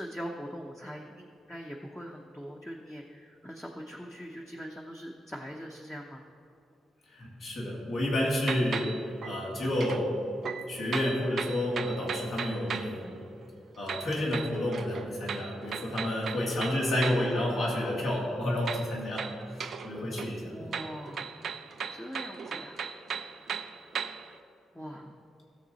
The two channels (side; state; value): both; normal; correlation 0.82